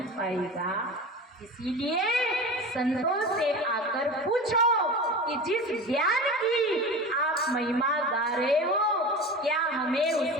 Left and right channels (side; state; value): both; normal; correlation 0.31